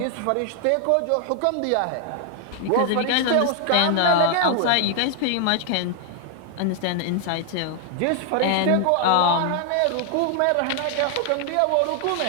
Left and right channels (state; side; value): different; both; correlation 0.00